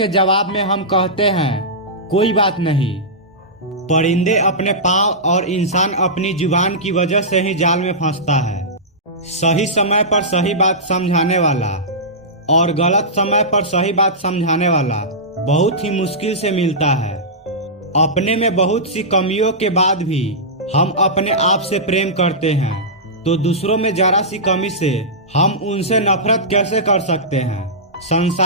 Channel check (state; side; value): normal; both; correlation -0.15